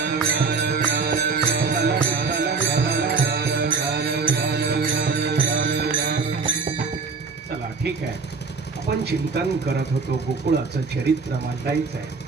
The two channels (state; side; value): quieter; left; 4.7 dB